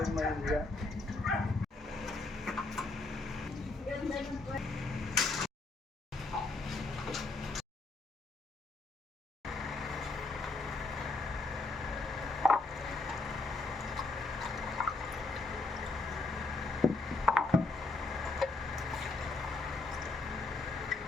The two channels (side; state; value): right; quieter; 3.3 dB